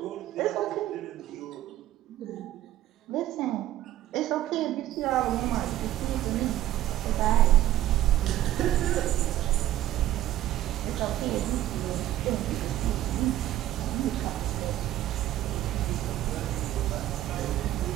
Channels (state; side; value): quieter; left; 13.7 dB